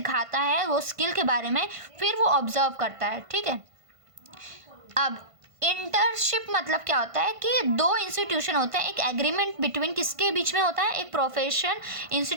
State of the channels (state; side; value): late; left; 1.5 ms